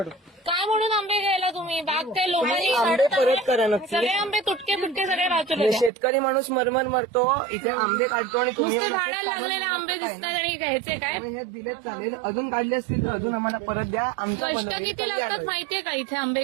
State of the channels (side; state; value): left; drops out; at 5.9 s